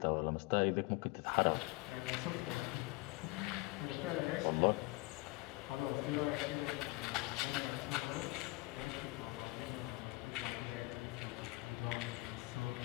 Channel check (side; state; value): right; quieter; 23.2 dB